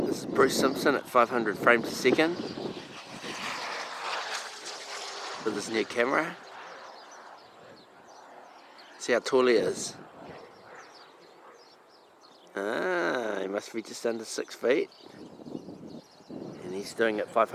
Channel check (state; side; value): identical; both; correlation 1.00